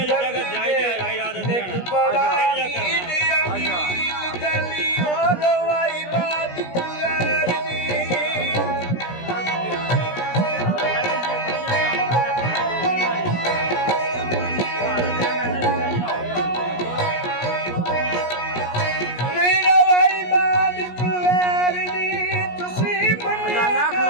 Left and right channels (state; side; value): late; right; 17 ms